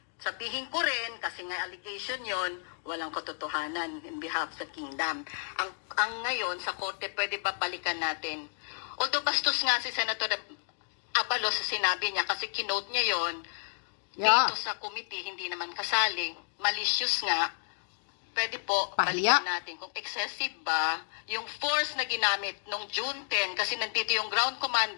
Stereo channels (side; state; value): right; silent; digital silence